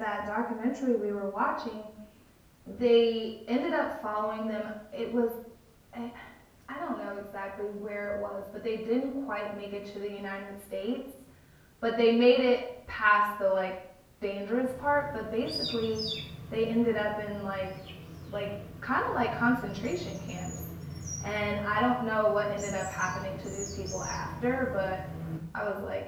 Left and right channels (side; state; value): both; identical; correlation 1.00